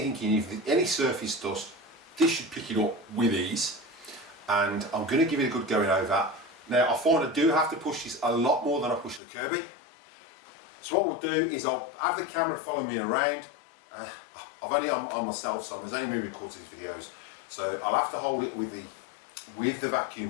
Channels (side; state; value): right; drops out; at 9.2 s